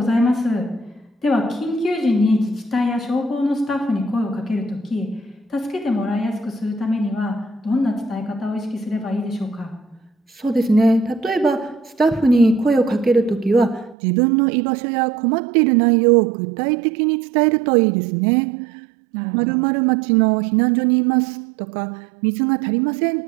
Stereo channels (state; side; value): drops out; left; at 14.0 s